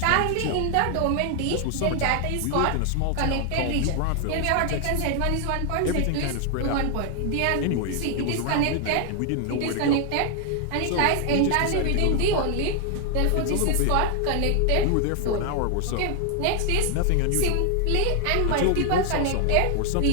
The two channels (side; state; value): both; different; correlation 0.00